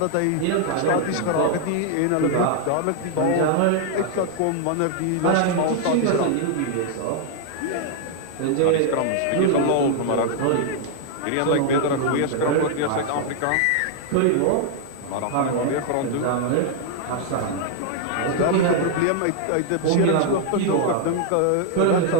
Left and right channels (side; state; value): both; different; correlation 0.00